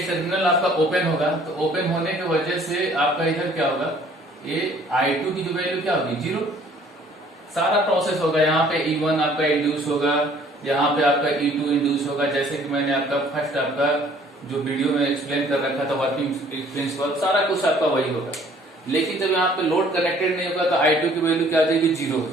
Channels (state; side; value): normal; both; correlation 0.57